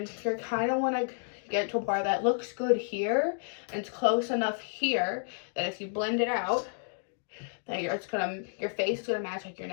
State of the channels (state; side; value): silent; right; digital silence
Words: you're kind of want to get to a part that looks good here and it's close enough here that if you blend it out, that your face is gonna match like your